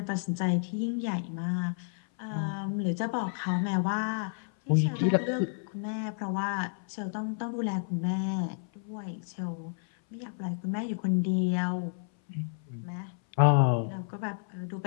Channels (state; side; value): silent; right; 57 dB below the other